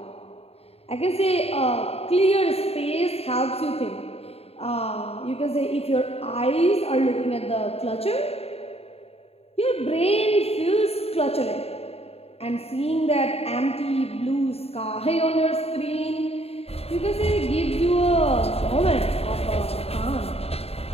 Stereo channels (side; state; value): right; late; 0.29 ms